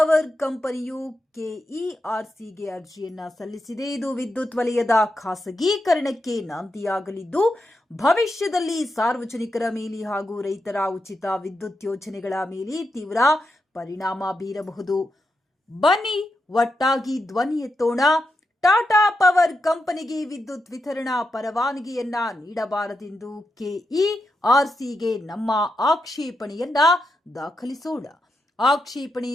ಕಂಪನಿಯು ಕೆಇಆರ್ಸಿಗೆ ಅರ್ಜಿಯನ್ನ ಸಲ್ಲಿಸಿದೆ. ಇದು ವಿದ್ಯುತ್ ವಲಯದ ಖಾಸಗೀಕರಣಕ್ಕೆ ನಾಂದಿಯಾಗಲಿದ್ದು, ಭವಿಷ್ಯದಲ್ಲಿ ಸಾರ್ವಜನಿಕರ ಮೇಲೆ ಹಾಗೂ ರೈತರ ಉಚಿತ ವಿದ್ಯುತ್ ಯೋಜನೆಗಳ ಮೇಲೆ ತೀವ್ರ ಪರಿಣಾಮ ಬೀರಬಹುದು. ಬನ್ನಿ ಒಟ್ಟಾಗಿ ಧ್ವನಿ ಎತ್ತೋಣ. ಟಾಟಾ ಪವರ್ ಕಂಪನಿಗೆ ವಿದ್ಯುತ್ ವಿತರಣಾ ಪರವಾನಗಿಯನ್ನ ನೀಡಬಾರದೆಂದು ಕೆಇಆರ್ಸಿಗೆ ನಮ್ಮ ಆಕ್ಷೇಪಣೆಯನ್ನ ದಾಖಲಿಸೋಣ. ಆಕ್ಷೇಪಣೆ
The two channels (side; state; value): both; normal; correlation 0.86